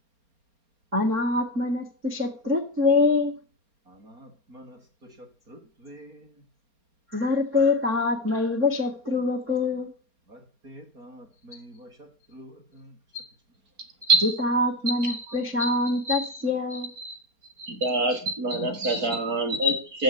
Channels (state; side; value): late; left; 4.3 ms